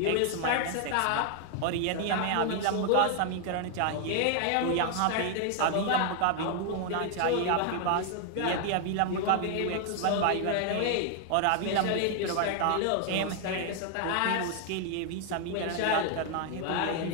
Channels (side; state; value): both; different; correlation 0.00